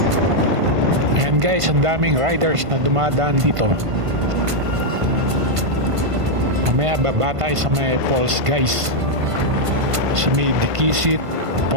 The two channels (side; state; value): left; late; 1.5 ms